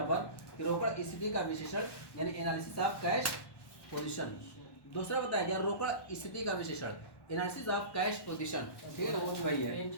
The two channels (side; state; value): right; late; 1.1 ms